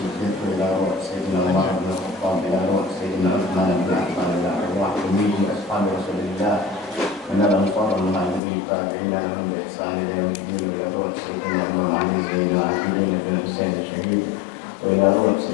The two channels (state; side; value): drops out; right; at 8.4 s